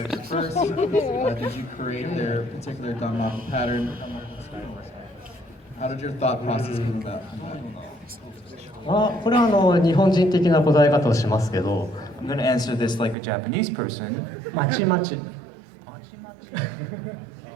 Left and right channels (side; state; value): left; drops out; at 13.2 s